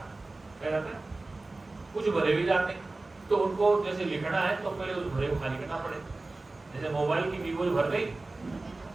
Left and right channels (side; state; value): left; quieter; 3.2 dB